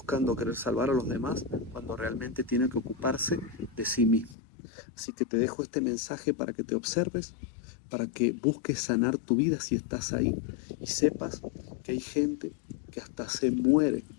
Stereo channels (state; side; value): drops out; right; at 4.4 s